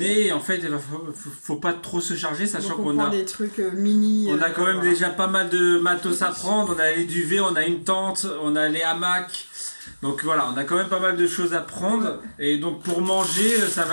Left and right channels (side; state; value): both; inverted; correlation -1.00